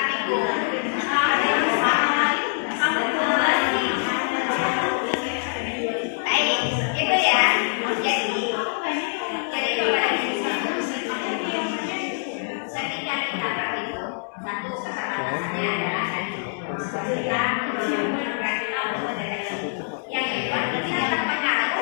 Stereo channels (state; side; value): silent; right; 62 dB below the other